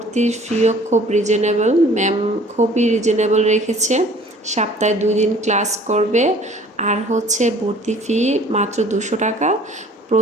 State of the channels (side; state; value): both; normal; correlation 0.52